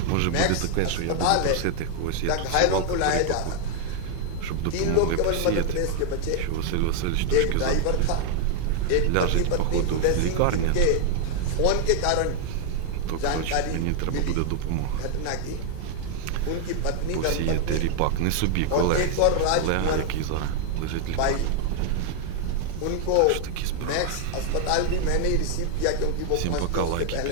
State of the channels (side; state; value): both; different; correlation 0.00